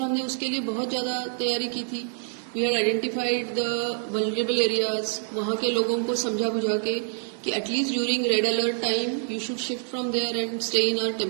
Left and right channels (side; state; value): left; silent; 61 dB below the other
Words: हमने उसके लिए बहुत ज्यादा तैयारी की थी। We had identified the vulnerable areas, वहाँ के लोगों को समझा बुझा के कि at least during red alert time you should shift from there and stay in our